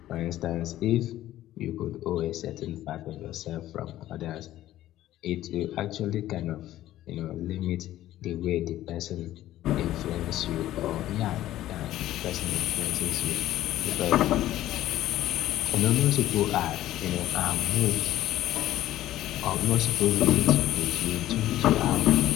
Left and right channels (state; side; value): quieter; right; 14.0 dB